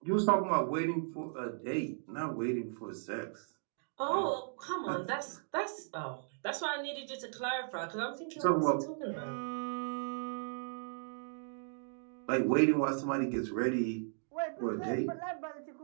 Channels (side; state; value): left; silent; digital silence